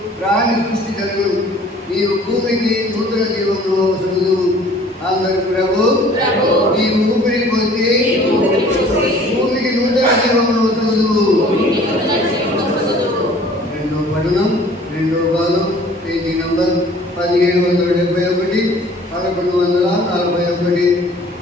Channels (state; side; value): normal; both; correlation 0.52